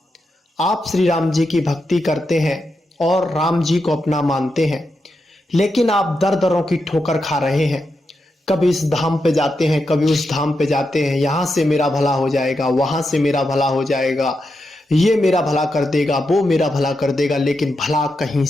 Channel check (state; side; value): normal; both; correlation 0.86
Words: आप श्री राम जी की भक्ति करते हैं और राम जी को अपना मानते हैं, लेकिन आप दर दरों की ठोकर खा रहे हैं। कभी इस धाम पे जाते हैं, कभी उस धाम पे जाते हैं। यहाँ से मेरा भला हो जाएगा, वहां से मेरा भला हो जाएगा, ये मेरा भला कर देगा, वो मेरा भला कर देगा, लेकिन भला कहीं